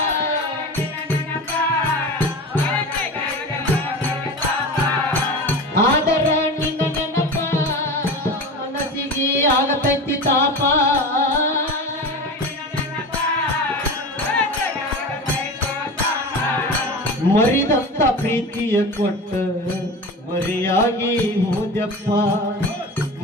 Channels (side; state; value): both; normal; correlation 0.30